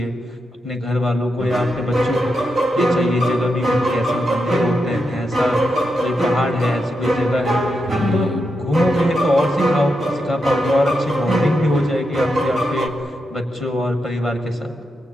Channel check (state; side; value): normal; both; correlation 0.85